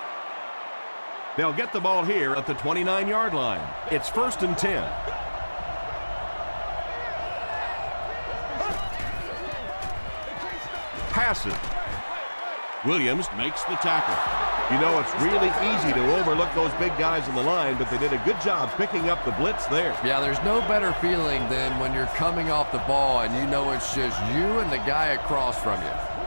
They'll get the ball here at the 29-yard line. It's 1st and 10. Passes. Williams makes the tackle. You know, it's really easy to overlook those big guys in the line, but they did a good job picking up the blitz there. Yeah, there's no better feeling than when you're coming off the ball and you know it's just you and the guy across from you.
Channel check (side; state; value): both; inverted; correlation -1.00